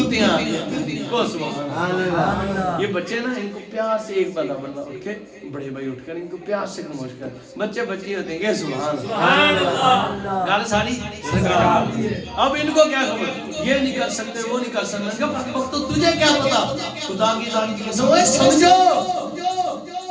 کو سبحان اللہ یہ بچے نا ان کو پیار سے ایک بندہ اٹھ کے بڑے بھائی اٹھ کر ان کو پیار سے خاموش کر بچے بچی ہوتے ہیں سبحان اللہ گل ساری اب ان کو کیا خبر یہ نہیں کر سکتے وہ نہیں کر سکتے وقت تو تجھے کیا پتا خدا کی ذات کی قسم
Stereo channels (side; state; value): both; identical; correlation 1.00